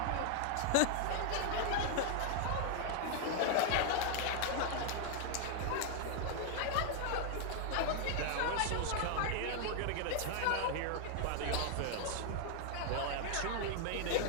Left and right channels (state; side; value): different; both; correlation 0.00